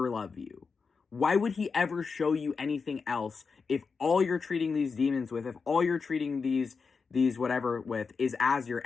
love you? Why would he ever show you anything else if all you're treating these demons with, if all you're treating these whatever with is as your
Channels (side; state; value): right; quieter; 5.1 dB